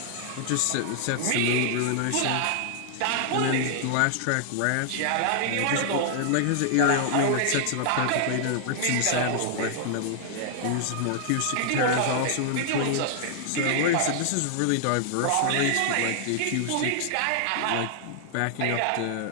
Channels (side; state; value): both; different; correlation -0.01